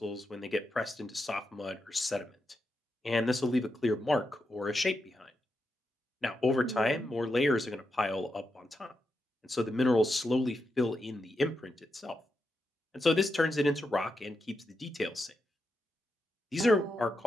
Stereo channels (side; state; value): both; normal; correlation 0.85